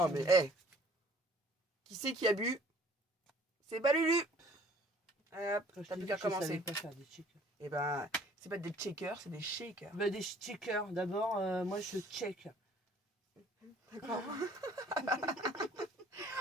mais, hé. Qui c'est qui a bu? C'est pas Lulu. Hop, Quand je t'as t'ai plus dit qu'à que je savais commencer. pas faire des checkers. Et ben, c'est pas des checkers, c'est des shakers. Bah, des checkers. D'abord, moi, je check. D'accord.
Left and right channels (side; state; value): both; normal; correlation 0.55